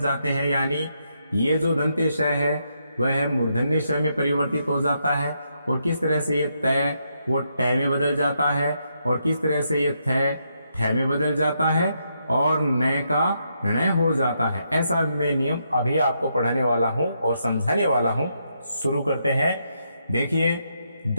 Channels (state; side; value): inverted; both; correlation -0.79